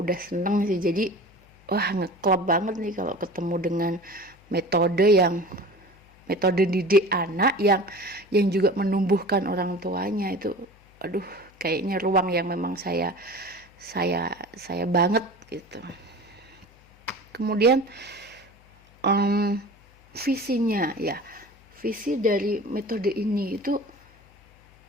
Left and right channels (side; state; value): left; noise; hum, 28 dB below the sound